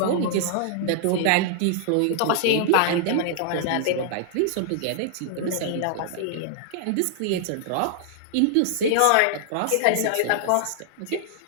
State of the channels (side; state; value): both; different; correlation -0.01